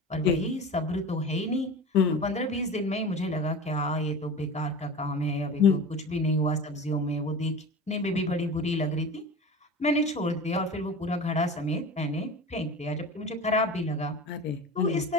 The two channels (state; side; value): normal; both; correlation 0.33